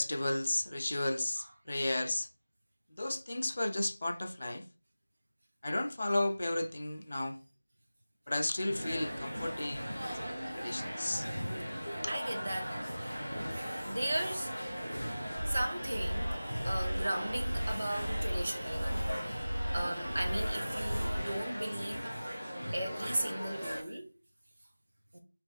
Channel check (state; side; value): inverted; both; correlation -0.97